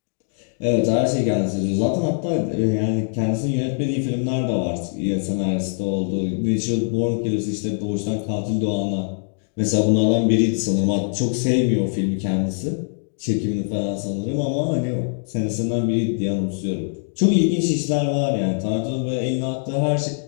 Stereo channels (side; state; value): right; silent; digital silence